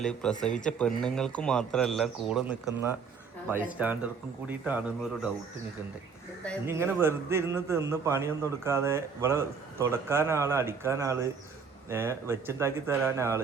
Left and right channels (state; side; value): quieter; left; 5.7 dB